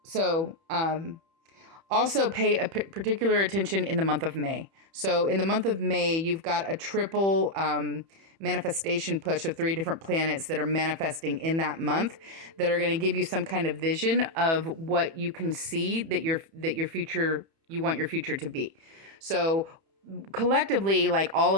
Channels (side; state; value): left; late; 31 ms